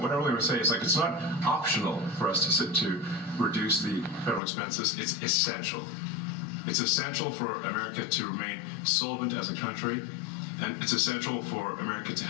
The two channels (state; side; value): drops out; right; at 4.4 s